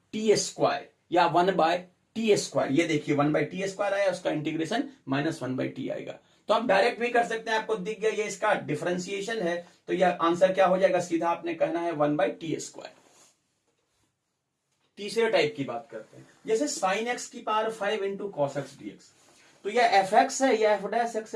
टी स्क्वायर या 1 बाय टी स्क्वायर। ये देखिए 1 बाय टी स्क्वायर आया, उसका इंटीग्रेशन -1 बाय टी आएगा। तो आप डायरेक्ट भी कर सकते हैं, आपको दिख गया ये इसका डिफरेंशिएशन है, तो यह आंसर क्या हो जाएगा? सीधा आपने कहना है 1 बाय टी स्क्वायर। तीसरे टाइप की बात करते हैं, जैसे साइन एक्स की पावर 5 इंटू कॉस एक्स डीएक्स। तो यह एफ एक्स है, यह एफ डैश एक्स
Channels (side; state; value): both; identical; correlation 1.00